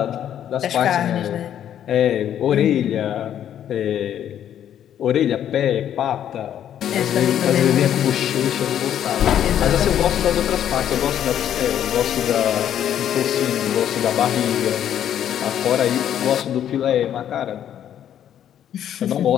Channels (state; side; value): quieter; right; 10.2 dB